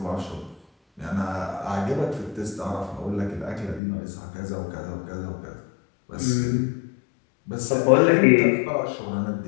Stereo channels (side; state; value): right; drops out; at 3.8 s